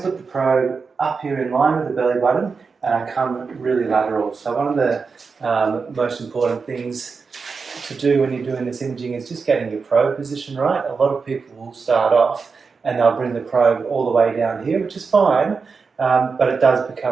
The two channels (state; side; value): quieter; left; 5.0 dB